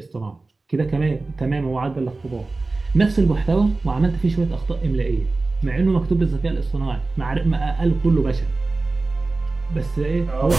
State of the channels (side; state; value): left; quieter; 3.4 dB